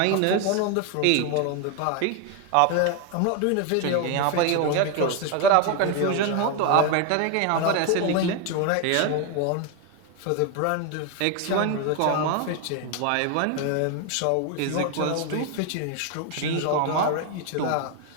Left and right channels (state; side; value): different; both; correlation 0.01